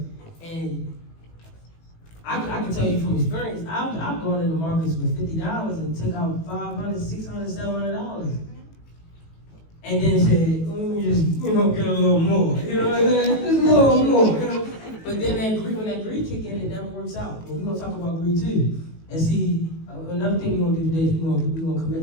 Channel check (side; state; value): right; late; 18 ms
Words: And I can tell you from experience, I've gone into markets with $50 and took out $500, $600, $700. And then said, let me just, get a little more. You know what I'm saying? Just a little more. You know? But then when that greed kick in, it never works out. But we're going to talk about greed too. And see, another thing we're going to do today is we're going to commit